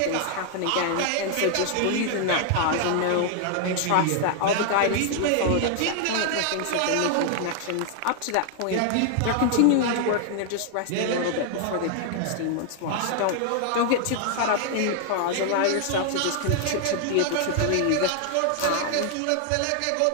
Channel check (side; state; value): both; different; correlation 0.00